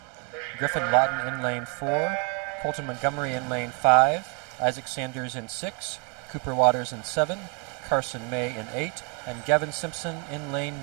Griffin Lawton in lane 4, Colton Montgomery in lane 5, Isaac Sanders in 6, Cooper Waters in 7, Carson May in 8, and Gavin Simpson in lane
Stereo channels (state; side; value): quieter; left; 35.1 dB